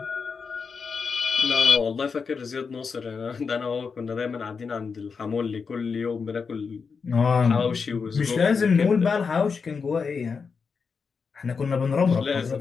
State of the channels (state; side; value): quieter; right; 5.4 dB